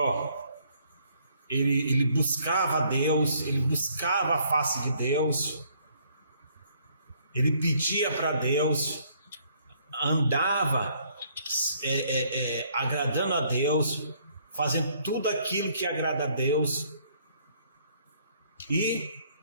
ele buscava a Deus, ele buscava a face de Deus, ele pedia para Deus, andava agradando a Deus, fazendo tudo aquilo que agrada a Deus. E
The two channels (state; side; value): inverted; both; correlation -0.65